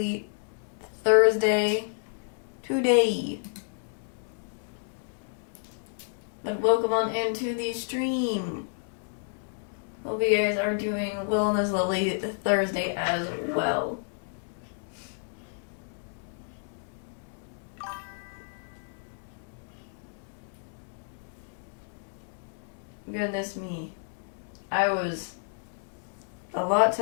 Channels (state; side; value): silent; right; digital silence